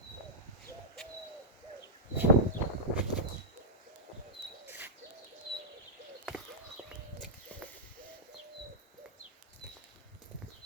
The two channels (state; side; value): normal; both; correlation -0.12